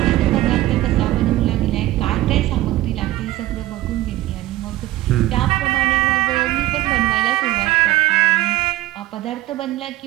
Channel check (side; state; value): left; quieter; 16.1 dB